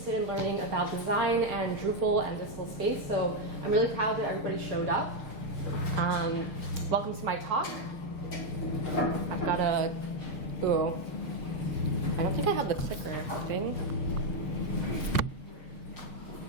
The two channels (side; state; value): right; late; 6.5 ms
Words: in learning about design and Drupal and digital space, so I'm really proud that everybody showed up. Welcome to my talk. I've got a, I don't think I have the clicker thing.